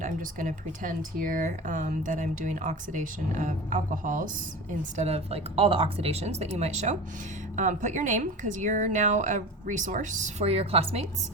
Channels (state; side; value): normal; both; correlation 0.31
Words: I'm just going to pretend here that I'm doing oxidation of alcohols instead of like all the oxidations that you might show. Put your name, because you're now a resource for your classmates.